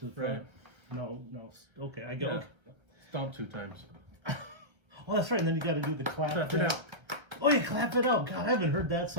to the front. Right. No. Okay, I go. Yeah. Stomp 2 times. Oh, that's right. And then you got to do the clap. Clap it out. Oh, yeah, clap it out. God, I haven't heard that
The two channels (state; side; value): late; left; 1.4 ms